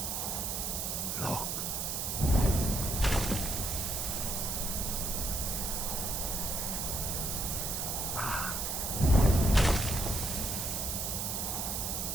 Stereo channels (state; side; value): noise; right; hiss, 1 dB below the sound